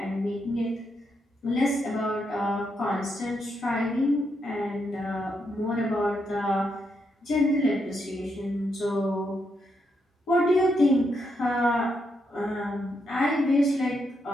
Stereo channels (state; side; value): normal; both; correlation 0.80